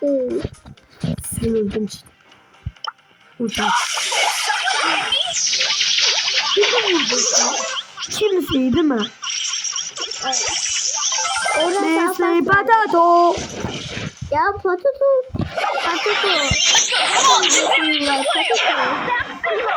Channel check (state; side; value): identical; both; correlation 1.00